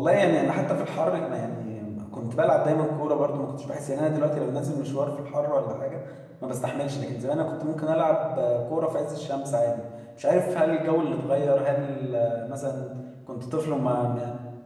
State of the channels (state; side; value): identical; both; correlation 1.00